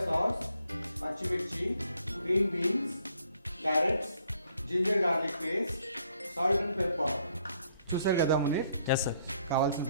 సాస్, పచ్చిమిర్చి, green beans, carrots, ginger garlic paste, salt and pepper. చూసారు కదా మునీర్, ఎస్ సార్. కావాల్సిన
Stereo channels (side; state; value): both; inverted; correlation -0.68